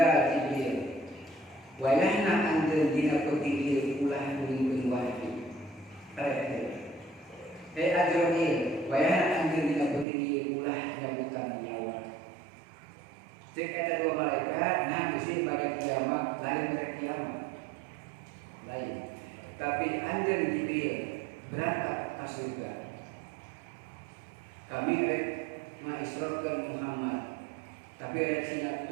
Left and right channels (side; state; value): left; drops out; at 10.1 s